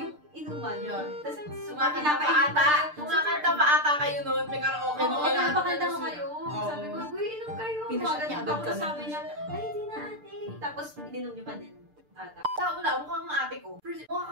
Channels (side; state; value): left; late; 6.7 ms